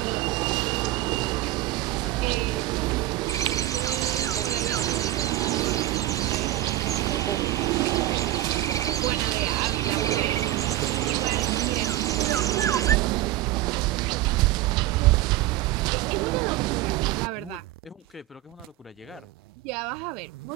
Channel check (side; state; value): left; quieter; 15.0 dB